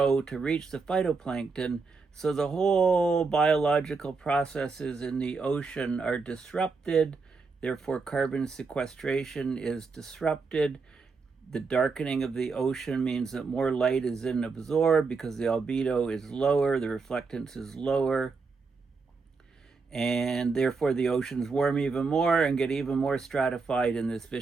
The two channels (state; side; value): quieter; left; 4.5 dB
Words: to reach the phytoplankton. So the whole biological processes in the ocean are disrupted, therefore carbon sequestration is disrupted. The darkening of the ocean means that more light is then absorbed because the albedo is lower, the reflectance is lower, and therefore the oceans warm even more and get even more stratified in this